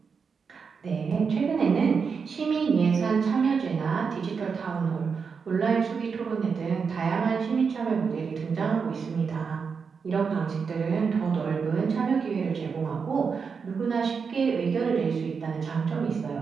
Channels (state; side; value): quieter; left; 5.7 dB